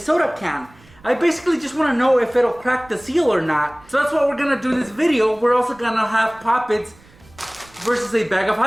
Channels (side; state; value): right; noise; rumble, 26 dB below the sound